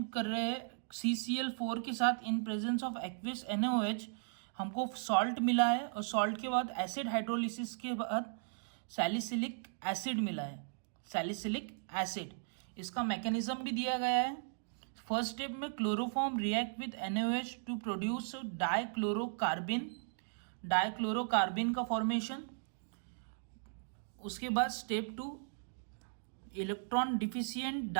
कर रहे हैं CCl4 के साथ in presence of aqueous NaOH, हमको सॉल्ट मिला है और सॉल्ट के बाद एसिड हाइड्रोलिसिस के बाद सैलिसिलिक एसिड मिला है, सैलिसिलिक एसिड। इसका मैकेनिज्म भी दिया गया है। फर्स्ट स्टेप में chloroform react with NaOH to produce dichlorocarbene, dichlorocarbene का फॉर्मेशन। उसके बाद step 2, electron deficient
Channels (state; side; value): silent; left; digital silence